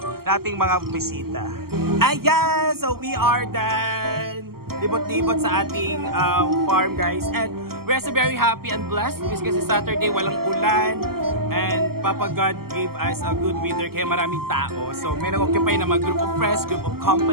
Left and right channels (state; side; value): late; left; 0.94 ms